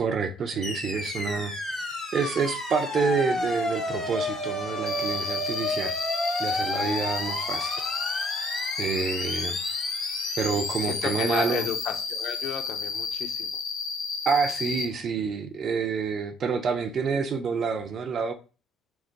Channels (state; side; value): normal; both; correlation 0.62